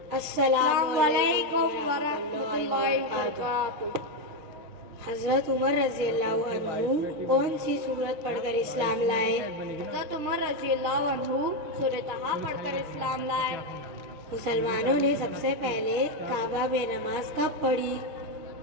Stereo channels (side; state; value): left; late; 6.6 ms